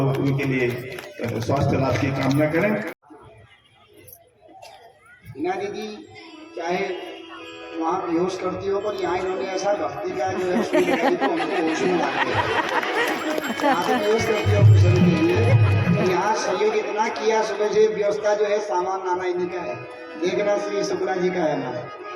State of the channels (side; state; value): both; identical; correlation 1.00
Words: उनके लिए स्वास्थ्य लाभ की कामना करें। हिना दीदी चाहे वहाँ बेहोश करती हो, पर यहाँ इन्होंने ऐसा भक्ति का जो है तो हमको होश में लाते हैं। यहाँ से बेहोश करती हो कुशल के लिए, तो यहाँ सहयोग इतना किया सुबह से, व्यवस्था जो है सामान लाना इन्हीं का है, देखना श्री शुक्ला जी का है हमारा।